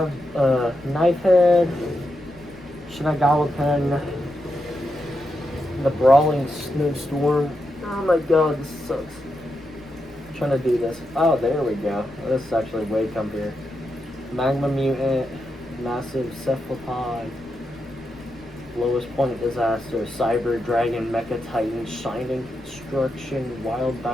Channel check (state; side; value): noise; left; rumble, 23 dB below the sound